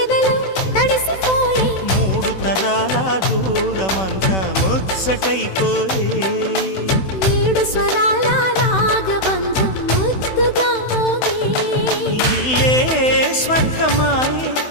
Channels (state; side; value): late; right; 16 ms